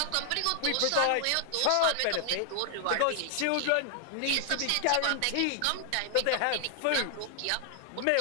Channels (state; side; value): different; both; correlation 0.00